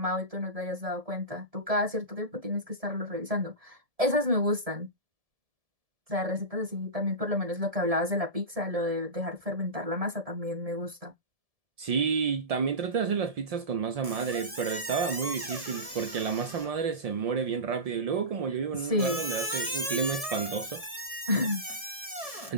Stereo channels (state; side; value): late; left; 1.7 ms